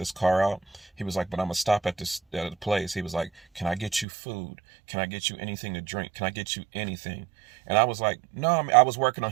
car out. He was like, but I'm gonna stop at the place. He was like, can I get you food? Can I get you anything to drink? Can I get you anything? And I was like, no, I was working on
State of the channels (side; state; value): left; drops out; at 4.0 s